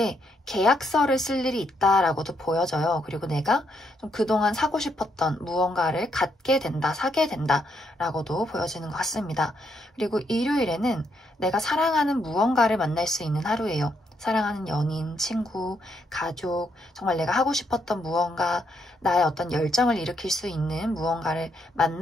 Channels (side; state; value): both; normal; correlation 0.76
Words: 계약서를 쓸 일이 있다라고도 보여져요. 그리고 내가 좀 그동안 사고 싶었던 무언가를 갖게 된다, 사게 된다라고도 보여지는 것 같습니다. 그리고 일요일에는 내가 사랑하는 무언가를 만날 수 있는 하루예요. 사랑하는 연인, 친구, 가족, 정말 내가 하고 싶었던 무언가, 나의 어떤 열정을 일으킬 수 있는 무언가를